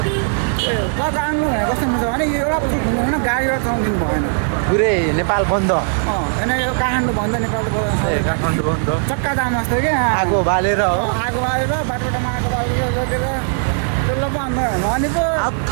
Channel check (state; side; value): silent; left; digital silence